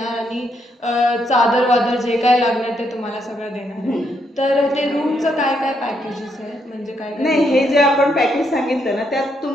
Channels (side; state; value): both; normal; correlation 0.76